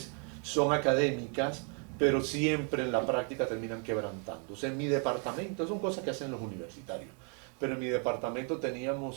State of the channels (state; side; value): quieter; left; 38.0 dB